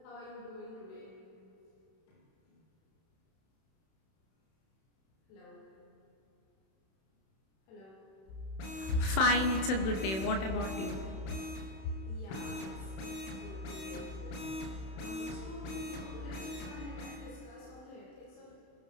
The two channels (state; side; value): late; right; 31 ms